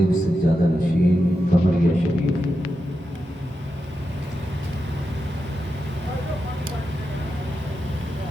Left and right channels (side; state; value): both; normal; correlation 0.88